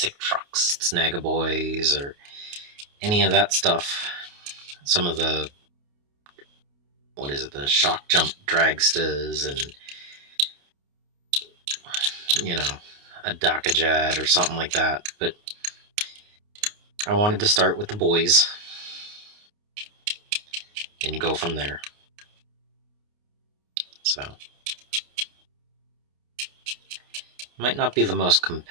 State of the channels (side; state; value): left; late; 29 ms